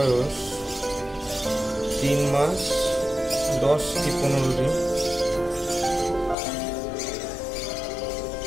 3 মাস 10 কি 15 দিন।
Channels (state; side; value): drops out; right; at 6.4 s